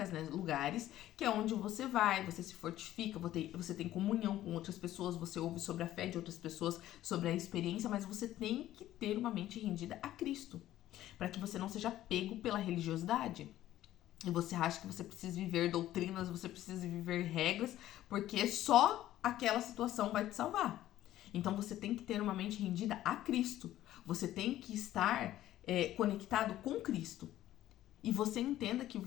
né, lugares, que é onde você vai, você se fortifica, você tem comunhão com outras pessoas, você ouve sobre a fé de outras pessoas, sobre a experiência, mas você tem que ter uma mente rendida a Cristo, para que você não seja pego pela religiosidade. E você acha que você precisa viver doutrinas, você precisa viver regras, porque só aquela situação vai te salvar. Então você tem que ter uma mente rendida a Cristo, você tem que estar conectado com Cristo. E você entenda que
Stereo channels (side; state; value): right; quieter; 13.7 dB